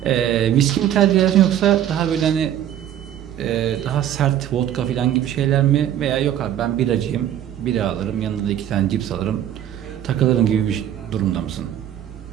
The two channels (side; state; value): left; quieter; 10.9 dB